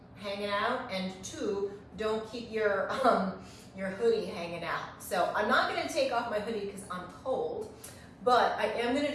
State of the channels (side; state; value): both; identical; correlation 1.00